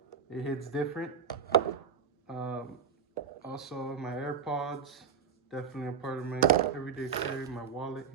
It hits different. Also, my AirPods, definitely a part of my everyday carry. My wallet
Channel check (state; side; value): quieter; left; 6.8 dB